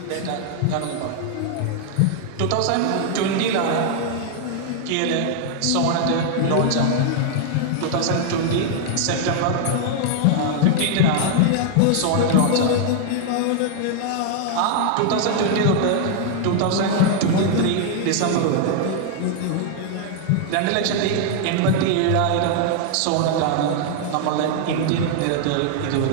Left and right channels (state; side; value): different; both; correlation 0.00